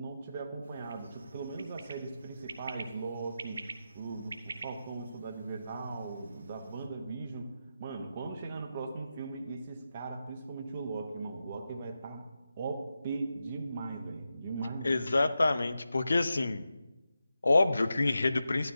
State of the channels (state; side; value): inverted; both; correlation -0.89